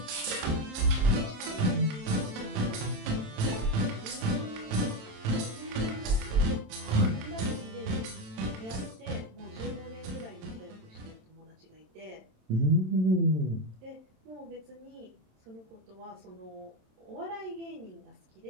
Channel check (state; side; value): late; left; 27 ms